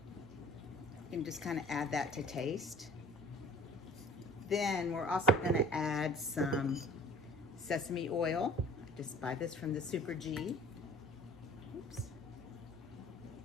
You can just kind of add that to taste. Then we're also gonna add some sesame oil. I just buy this from the Super G. Oops.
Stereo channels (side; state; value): both; normal; correlation 0.47